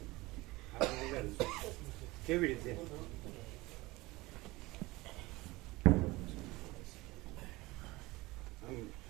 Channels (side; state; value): left; quieter; 21.0 dB